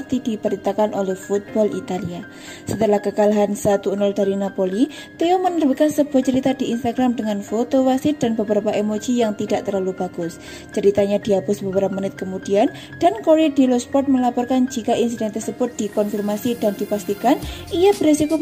diberitakan oleh Football Italia. Setelah kekalahan 1-0 dari Napoli, Theo menerbitkan sebuah cerita di Instagram dengan foto wasit dan beberapa emoji yang tidak terlalu bagus. Ceritanya dihapus beberapa menit kemudian dan Corriere dello Sport melaporkan jika insiden tersebut dikonfirmasi dan dipastikan ia beresiko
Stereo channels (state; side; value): identical; both; correlation 1.00